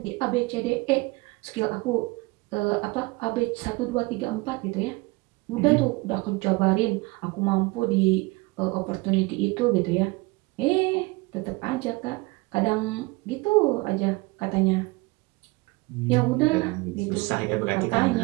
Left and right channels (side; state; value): left; quieter; 24.1 dB